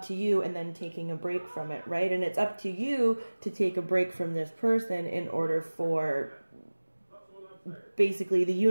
to you and then taking a break from it, right? And it's up to you to take a break from this person in order for basically the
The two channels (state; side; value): inverted; both; correlation -1.00